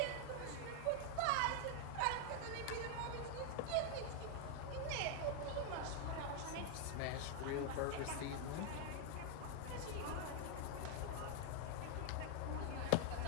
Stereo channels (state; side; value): different; both; correlation 0.00